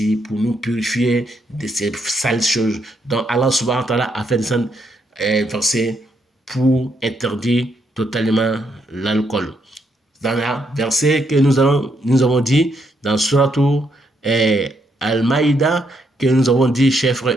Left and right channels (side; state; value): both; normal; correlation 0.76